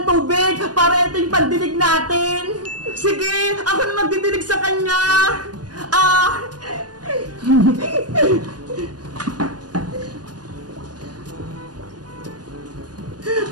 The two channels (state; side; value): late; left; 0.69 ms